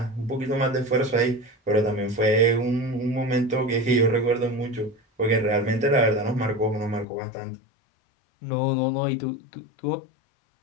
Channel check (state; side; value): drops out; right; at 7.1 s